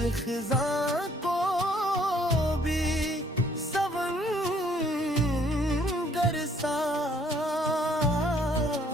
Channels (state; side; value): normal; both; correlation 0.63